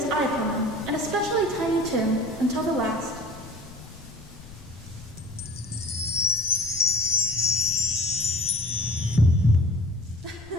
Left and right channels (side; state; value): left; noise; rumble, 21 dB below the sound